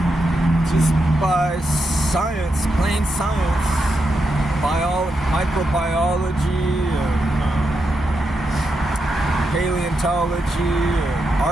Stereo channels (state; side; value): normal; both; correlation 0.85